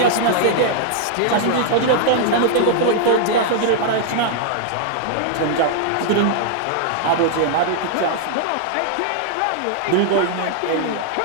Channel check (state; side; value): different; both; correlation -0.01